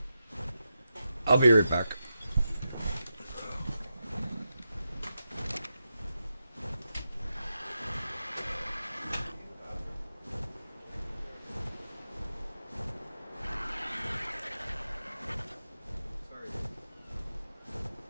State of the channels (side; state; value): both; inverted; correlation -0.88